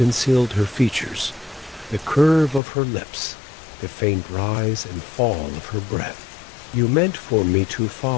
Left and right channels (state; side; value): drops out; right; at 2.6 s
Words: her features, the curve of her lips, the faint rise and fall of her breath. "You meant for me to